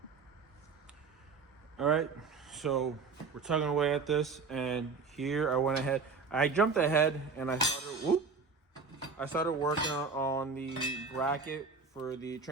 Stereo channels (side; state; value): left; quieter; 4.9 dB